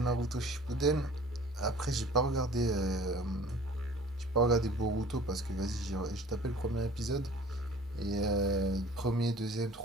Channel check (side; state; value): both; normal; correlation 0.48